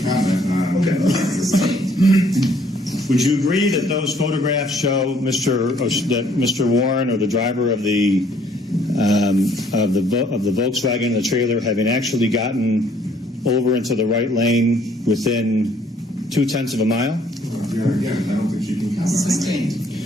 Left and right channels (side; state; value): both; normal; correlation 0.63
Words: comment. Okay. Would you agree that those photographs show that Mr. Warren, or the driver of the Volkswagen and the trailer, having actually gotten over into the right lane within 0.2 of a mile? Your Honor, again, I don't think she can comment. Sustained.